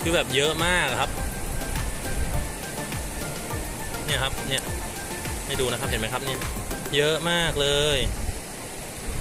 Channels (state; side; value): identical; both; correlation 1.00